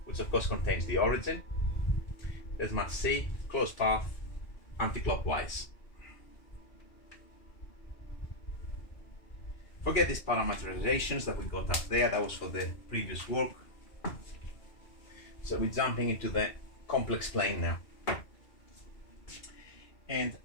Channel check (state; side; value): late; right; 2.4 ms